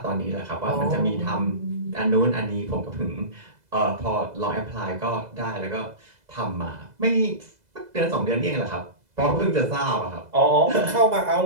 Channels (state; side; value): late; left; 2.0 ms